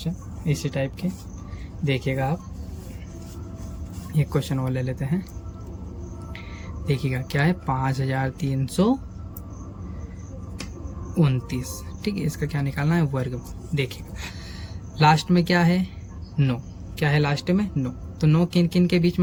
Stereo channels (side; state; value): both; identical; correlation 1.00